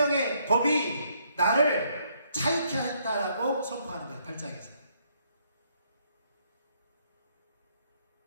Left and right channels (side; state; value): both; inverted; correlation -0.71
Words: 법이 나를 자유케 했다라고 선포하는 거예요. 8장에서.